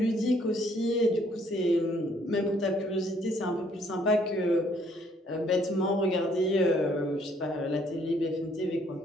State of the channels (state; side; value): normal; both; correlation 0.65